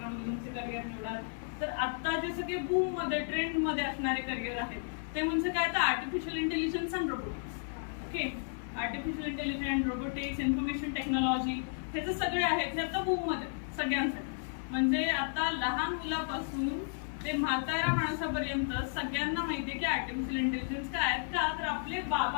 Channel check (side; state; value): right; silent; 56 dB below the other